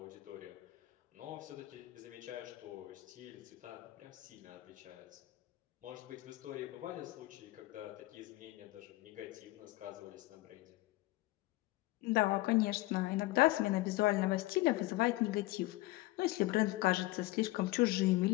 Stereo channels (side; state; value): right; quieter; 19.3 dB